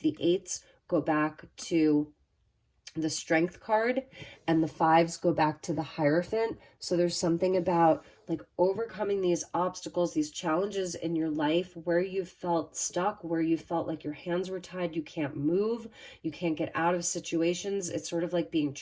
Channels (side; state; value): both; identical; correlation 1.00